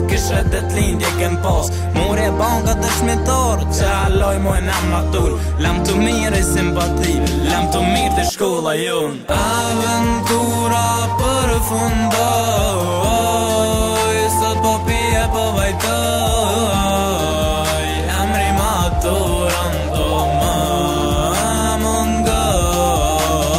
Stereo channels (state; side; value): identical; both; correlation 1.00